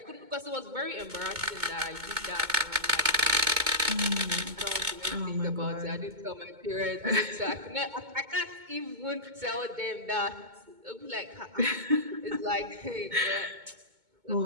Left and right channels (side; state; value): left; late; 2.2 ms